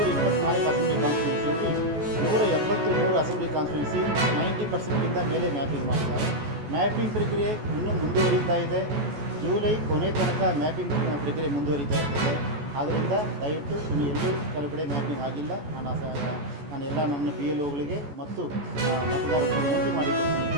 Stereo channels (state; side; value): late; left; 14 ms